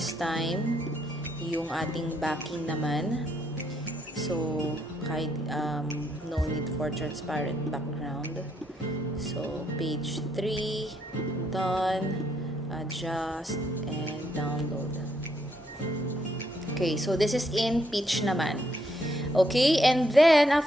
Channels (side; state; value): both; normal; correlation 0.74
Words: time yung ating backing naman. So kahit no need for transparent background. So page 3 done. adjust, and download. Okay, so this is in pitch naman. Okay, and then